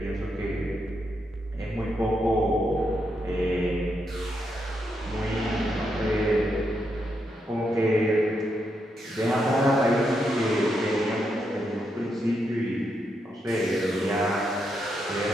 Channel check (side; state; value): both; normal; correlation 0.81